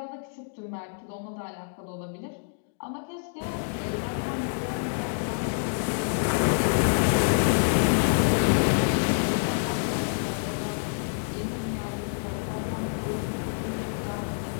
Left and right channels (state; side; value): silent; right; digital silence